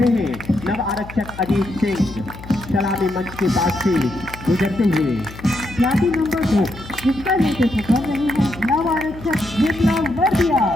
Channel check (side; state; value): left; noise; hum, 15 dB below the sound